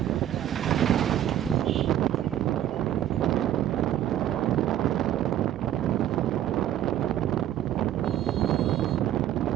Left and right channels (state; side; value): quieter; left; 11.7 dB